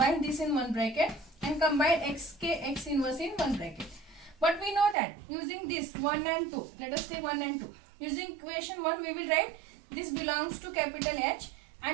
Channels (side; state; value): left; drops out; at 5.0 s